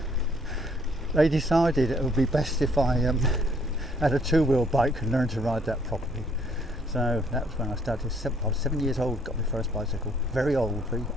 they decided it would be best if I had a 2-wheel bike and learned to ride that properly. So that was when I started. I was 7 years old, got my first bicycle. Very old, very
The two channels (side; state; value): both; normal; correlation 0.64